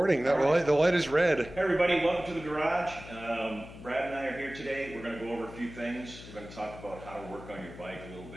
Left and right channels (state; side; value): noise; left; hum, 15 dB below the sound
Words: The light is red. Hey everybody, welcome to the garage. Brad and I are here today. We're going to go over a few things. We're going to talk about how to work on your bike a little